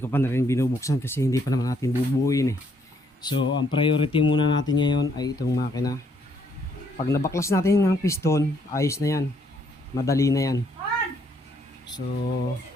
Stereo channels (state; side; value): normal; both; correlation 0.69